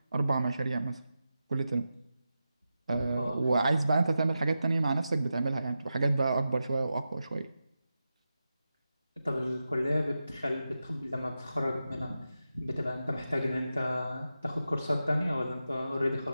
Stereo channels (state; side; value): inverted; both; correlation -0.91